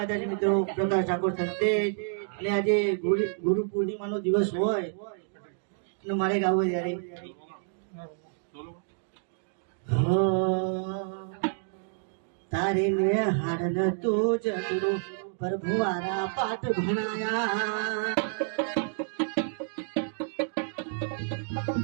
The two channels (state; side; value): silent; left; digital silence